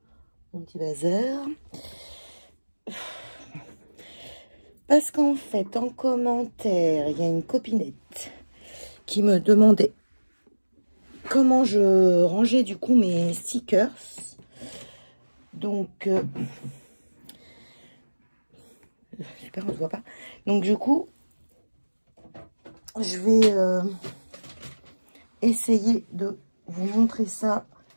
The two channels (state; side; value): inverted; both; correlation -1.00